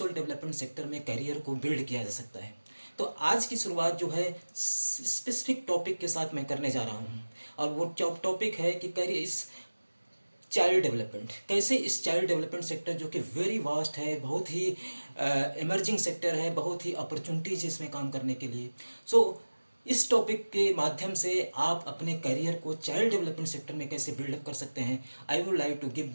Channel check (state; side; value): inverted; both; correlation -1.00